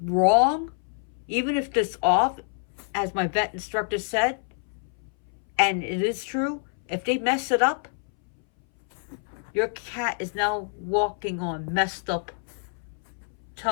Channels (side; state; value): right; silent; 60 dB below the other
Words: wrong, even if it's off, as my vet instructor said, and it is true, if they mess it up, your cat is now walking on messed up